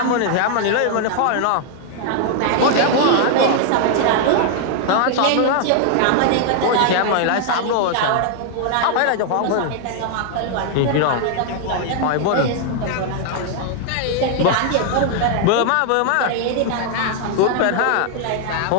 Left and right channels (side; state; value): both; different; correlation 0.00